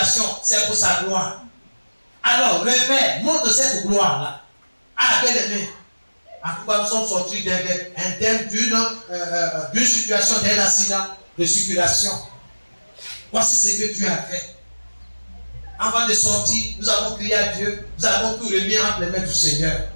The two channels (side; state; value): both; inverted; correlation -1.00